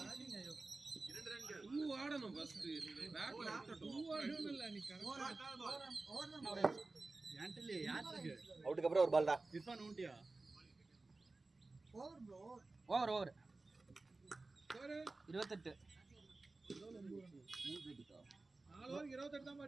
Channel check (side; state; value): left; quieter; 3.4 dB